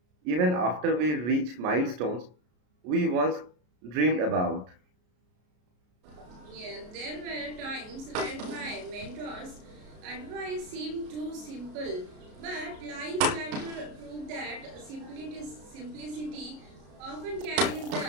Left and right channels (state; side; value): late; left; 33 ms